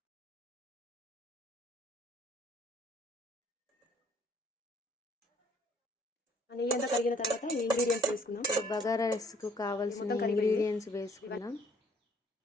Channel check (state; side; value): normal; both; correlation 0.61